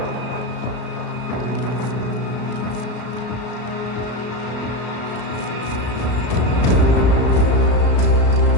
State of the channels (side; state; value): right; late; 34 ms